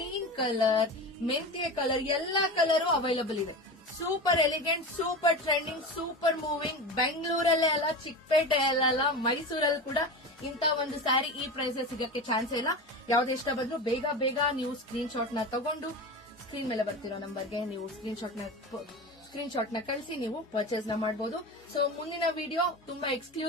colour, ಮೆಂತ್ಯ ಕಲರ್, ಎಲ್ಲಾ ಕಲರ್ ಅವೈಲಬಲ್ ಇದೆ. Super elegant, super trending, super moving. ಬೆಂಗಳೂರಲ್ಲೇ ಅಲ್ಲ, ಚಿಕ್ಕಪೇಟೆಯಲ್ಲ, ಮೈಸೂರಲ್ಲಿ ಕೂಡ ಇಂತ ಒಂದು ಸ್ಯಾರಿ ಈ ಪ್ರೈಸ್ ಸಿಗಕ್ಕೆ ಚಾನ್ಸ್ ಇಲ್ಲ. ಯಾವ್ದು ಇಷ್ಟ ಬಂದ್ರು ಬೇಗ ನೀವು ಸ್ಕ್ರೀನ್ ಶಾಟ್ ನ ತಗೊಂಡು ಸ್ಕ್ರೀನ್ ಮೇಲೆ ಬರ್ತಿರೋ ನಂಬರ್ಗೆ ನೀವು ಸ್ಕ್ರೀನ್ ಶಾಟ್ ನ ಕಳಿಸಿ ನೀವು ಪರ್ಚೇಸ್ ನ ಮಾಡಬಹುದು. ಸೊ ಮುಂದಿನ ವಿಡಿಯೋ ತುಂಬಾ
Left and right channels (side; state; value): both; normal; correlation 0.27